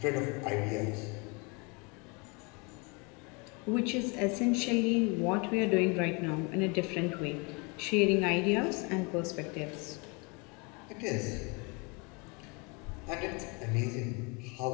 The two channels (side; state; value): right; quieter; 30.6 dB